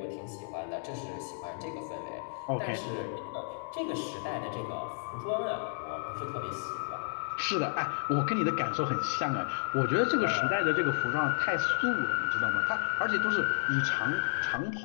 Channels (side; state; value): right; silent; digital silence